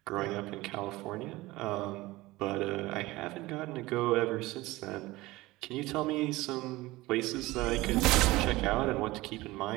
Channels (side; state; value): left; quieter; 19.6 dB